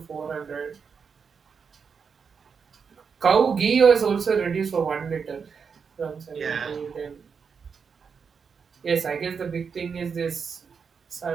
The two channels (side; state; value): left; quieter; 6.0 dB